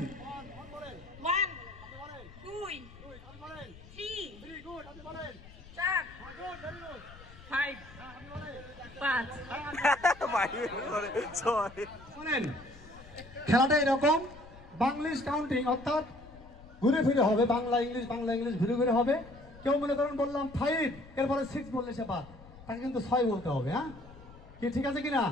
1 2 3 4 5 5 শোনেন খেলাটা এরকম বাংলিশ কাউন্টিং, অর্থাৎ ঘুরে ফিরে হবে, বাংলা ইংলিশ ঘুরে ঘুরে হবে। কেউ মনে করেন বললাম 5, এরপরে 6 বললে সে বাদ, তাকে কিন্তু 6 বলতে হবে। হ্যাঁ কি ঠিক আছে কিনা?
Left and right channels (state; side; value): noise; left; rumble, 19 dB below the sound